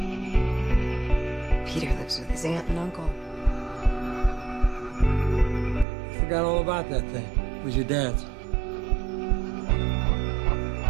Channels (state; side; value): drops out; left; at 5.9 s